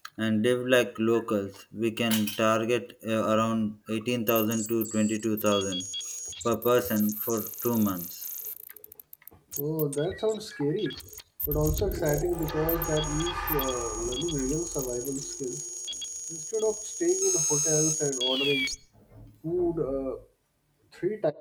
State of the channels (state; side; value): identical; both; correlation 1.00